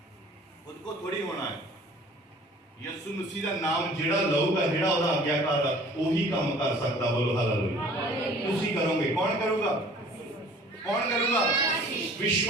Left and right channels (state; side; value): normal; both; correlation 0.50